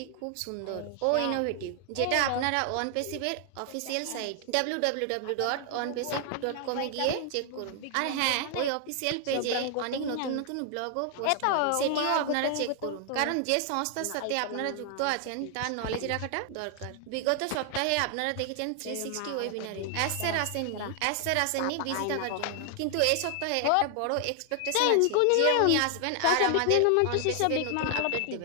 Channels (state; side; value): different; both; correlation 0.00